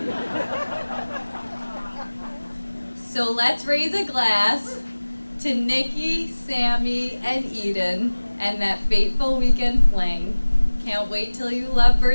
So let's raise a glass to Niki, Sammy, and Eden, and that fateful weekend fling. Can't wait till you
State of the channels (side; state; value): both; inverted; correlation -1.00